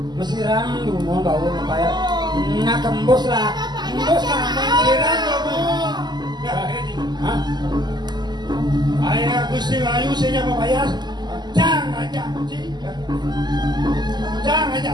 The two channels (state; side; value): late; left; 0.21 ms